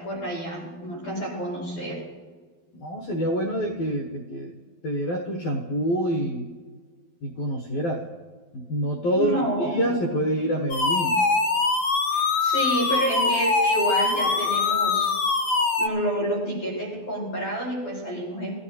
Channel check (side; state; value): right; late; 12 ms